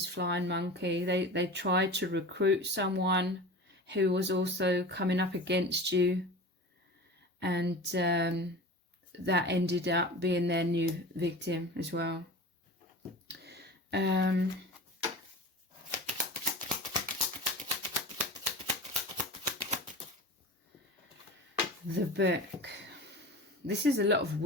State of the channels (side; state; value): both; normal; correlation 0.34